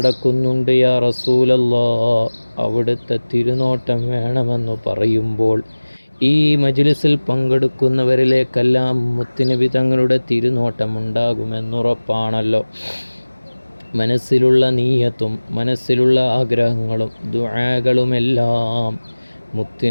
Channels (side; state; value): both; inverted; correlation -1.00